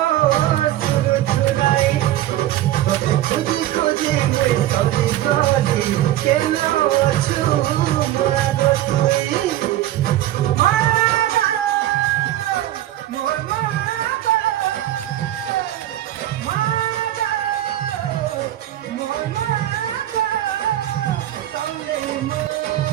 শুরু শুনাই তোতে খুঁজি খুঁজি মুই ঠকি গলি কেন আছু মাগ তুই মাগ মোর মাগ মাগ মোর মাগ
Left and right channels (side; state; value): left; quieter; 13.7 dB